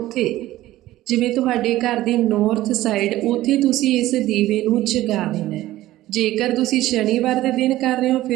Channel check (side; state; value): left; quieter; 15.6 dB